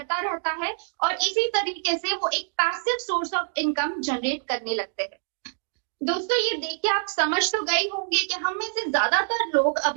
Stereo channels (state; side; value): silent; left; digital silence